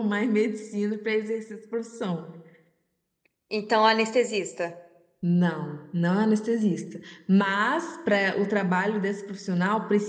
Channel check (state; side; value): identical; both; correlation 1.00